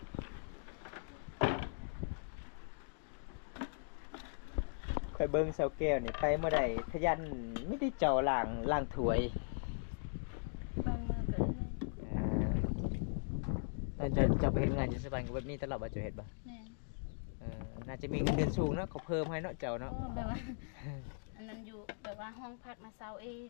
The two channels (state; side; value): silent; right; digital silence